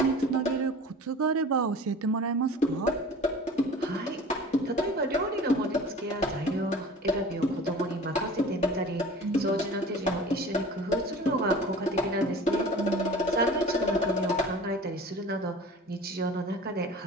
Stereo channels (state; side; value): normal; both; correlation 0.41